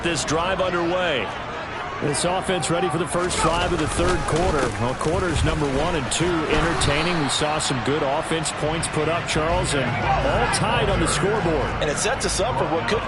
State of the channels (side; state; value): both; identical; correlation 1.00